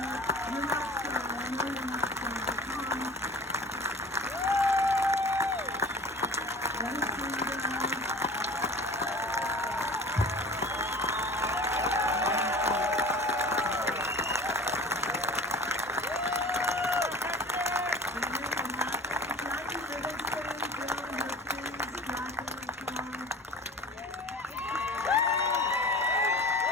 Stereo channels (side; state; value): both; normal; correlation 0.40